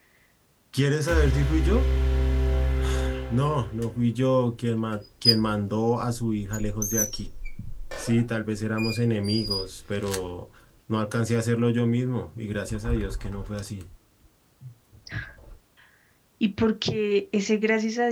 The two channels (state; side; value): identical; both; correlation 1.00